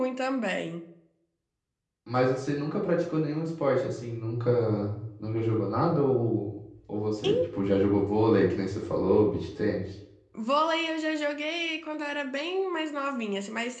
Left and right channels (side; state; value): both; identical; correlation 1.00